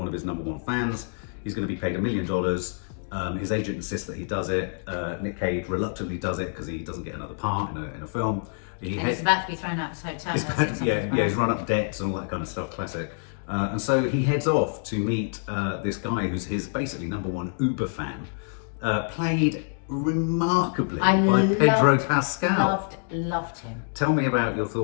of his number one fans. He's going to be paid $1 million. His agent insists that he does it. Nick Cage reluctantly does it because he doesn't get another part in a film. He's about to be thrown out of his hotel. He's run up debts and all that kind of stuff, classic. And so he heads off to meet this guy who's his basically number one Uber fan, played remarkably by Pedro Pascal. Loved him. Tell me about your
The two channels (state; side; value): silent; right; 61 dB below the other